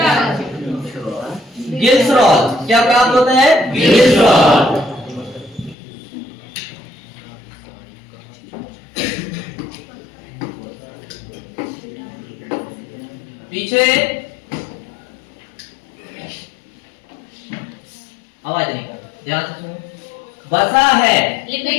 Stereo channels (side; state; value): right; drops out; at 5.8 s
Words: ग्लिसरॉल। क्या प्राप्त होता है? ग्लिसरॉल। पीछे आवाज नहीं कर, ध्यान से सुनो। वसा है